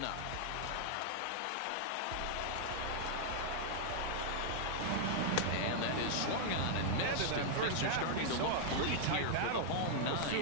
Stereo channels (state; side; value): different; both; correlation -0.01